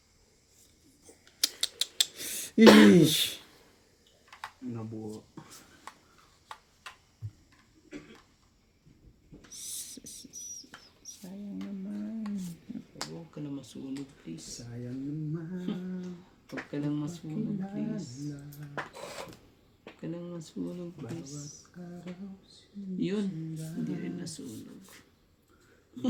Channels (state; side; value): identical; both; correlation 1.00